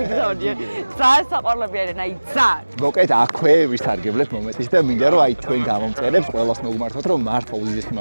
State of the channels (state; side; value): inverted; both; correlation -1.00